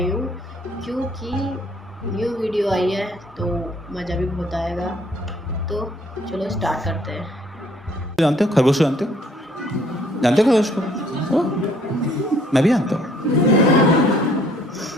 हूँ, क्योंकि न्यू वीडियो आई है तो मज़ा भी बहुत आएगा। तो चलो स्टार्ट करते हैं। जानते हो खरगोश? जानते हो? जानते हो खरगोश को? ओ, मैं भी जानता हूँ।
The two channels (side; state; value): both; normal; correlation 0.61